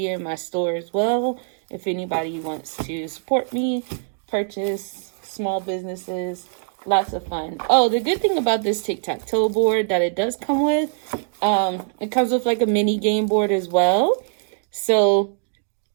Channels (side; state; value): left; silent; digital silence